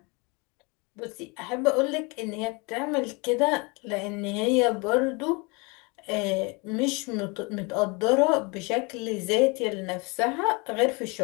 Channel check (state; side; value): quieter; right; 29.0 dB